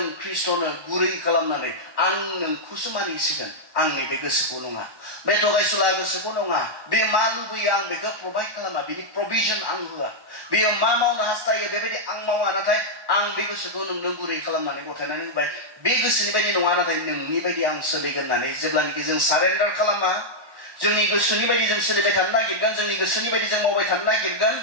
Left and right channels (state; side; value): late; left; 1.1 ms